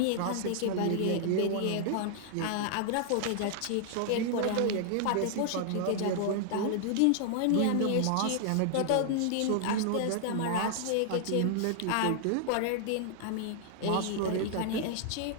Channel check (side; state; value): both; different; correlation -0.01